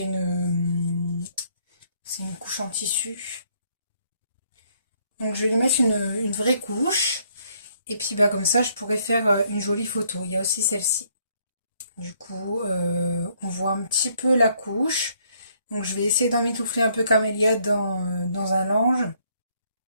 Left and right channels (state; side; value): inverted; both; correlation -0.68